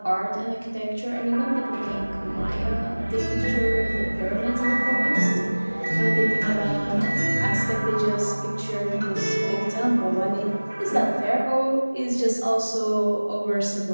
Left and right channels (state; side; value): inverted; both; correlation -1.00